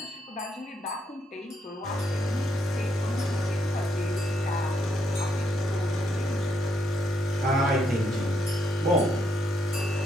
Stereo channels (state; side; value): normal; both; correlation 0.76